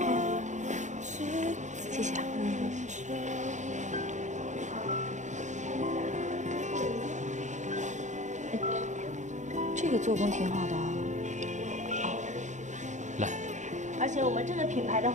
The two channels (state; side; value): late; left; 0.35 ms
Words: 谢谢啊。这个做工挺好的啊。来。而且我们这个品牌的